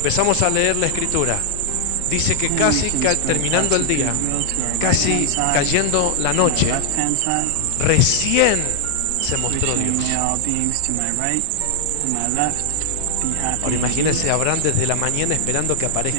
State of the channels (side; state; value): both; different; correlation 0.00